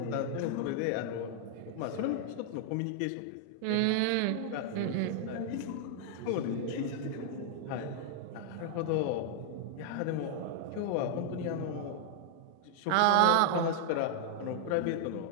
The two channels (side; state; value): both; different; correlation 0.00